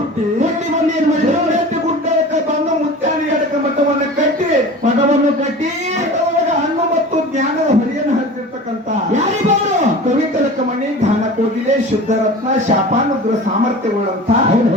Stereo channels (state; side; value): normal; both; correlation 0.37